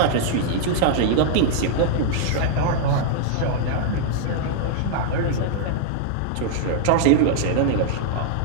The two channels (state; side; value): different; both; correlation -0.01